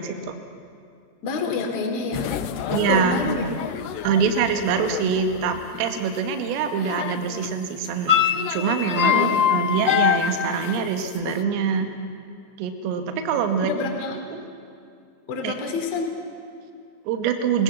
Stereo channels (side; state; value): left; late; 13 ms